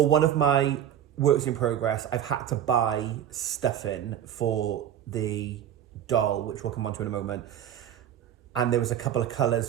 one of my works in progress, I've had to buy stuffing for the doll, which we'll come on to in a moment. And there was a couple of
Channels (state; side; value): quieter; left; 10.4 dB